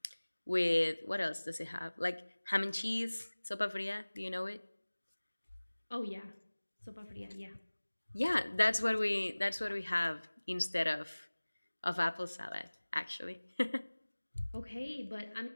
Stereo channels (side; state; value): both; inverted; correlation -1.00